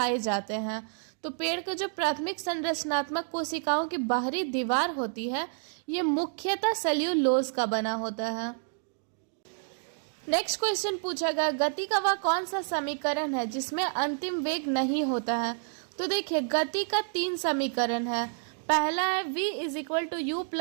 जाते हैं। तो पेड़ का जो प्राथमिक संरचनात्मक कोशिकाओं की बाहरी दीवार होती है ये मुख्यतः सेल्यूलोज का बना होता है। नेक्स्ट क्वेश्चन पूछा गया, गति का वह कौन सा समीकरण है जिसमें अंतिम वेग नहीं होता है। तो देखिए गति का 3 समीकरण है। पहला है V = U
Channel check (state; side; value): silent; left; 58 dB below the other